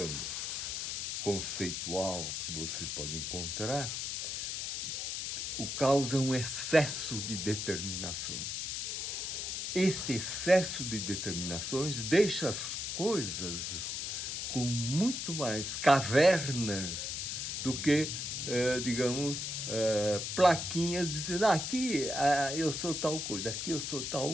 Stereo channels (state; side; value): noise; left; hiss, 3 dB below the sound